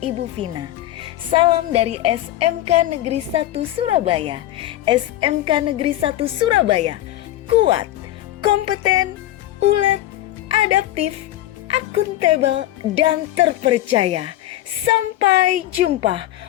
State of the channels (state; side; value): quieter; right; 14.3 dB